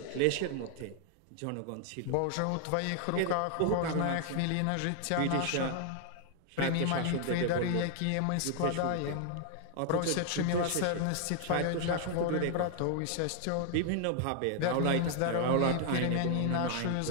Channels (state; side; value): different; both; correlation 0.00